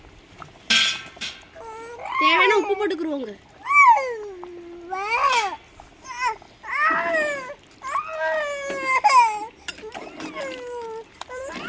தேவையான உப்பு போட்டுக்குருவோங்க.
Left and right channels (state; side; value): identical; both; correlation 1.00